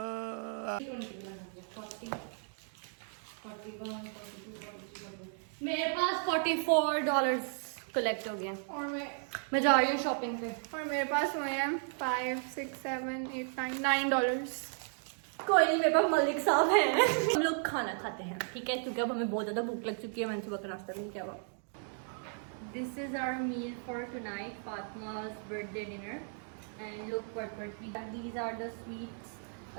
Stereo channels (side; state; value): left; silent; 55 dB below the other